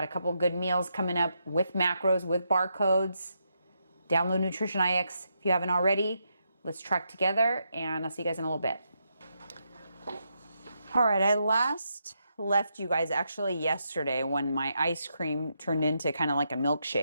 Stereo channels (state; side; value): inverted; both; correlation -0.82